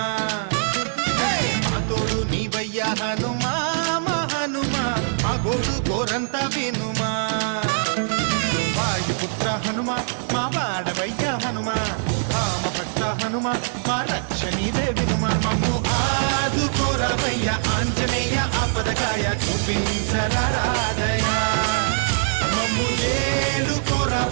మా తోడు నీవయ్య హనుమా మా హనుమా మా గోడు గోరంత వినుమా వాయుపుత్ర హనుమా మా వాడవయ్య హనుమా రామ భక్త హనుమా మా రక్షణీదే వినుమా మమ్ము ఆదుకోరావయ్య ఆంజనేయ ఆపదకాయ చూపించరాదయా మమ్ము ఏలు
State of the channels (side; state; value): left; silent; digital silence